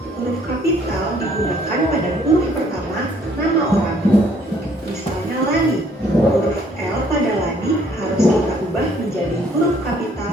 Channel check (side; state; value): both; normal; correlation 0.63